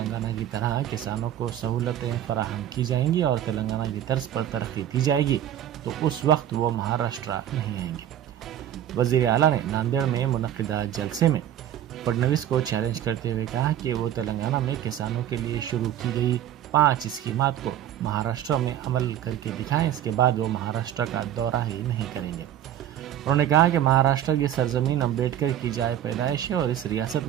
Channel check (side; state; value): left; quieter; 11.2 dB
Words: की तरह किसानों को सहूलतें फराहम की जाएंगी और तेलंगाना की तर्ज पर तरक्की दी जाएगी तो उस वक्त वो महाराष्ट्र नहीं आएंगे। वजीर आला ने नांदेड़ में मुनक्किदा जलसे में फडणवीस को चैलेंज करते हुए कहा कि वो तेलंगाना में किसानों के लिए शुरू की गई 5 स्कीमात को महाराष्ट्र में अमल करके दिखाएं, इसके बाद वो महाराष्ट्र का दौरा ही नहीं करेंगे। उन्होंने कहा कि महाराष्ट्र की सरजमीन अम्बेडकर की जाए पैदाइश है और इस रियासत